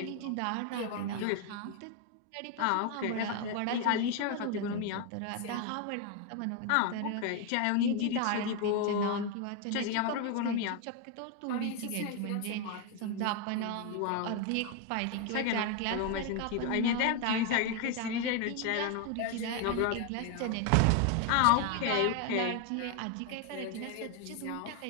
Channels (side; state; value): both; different; correlation 0.01